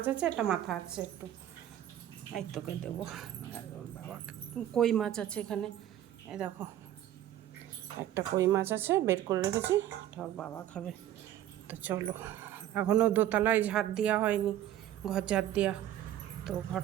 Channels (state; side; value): quieter; left; 12.2 dB